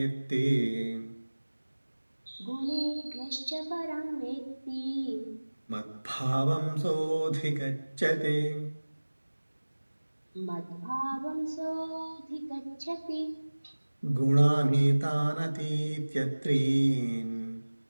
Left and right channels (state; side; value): inverted; both; correlation -1.00